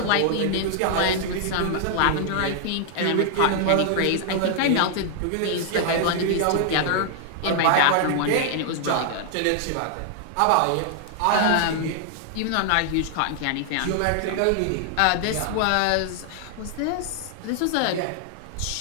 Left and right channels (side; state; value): both; different; correlation 0.00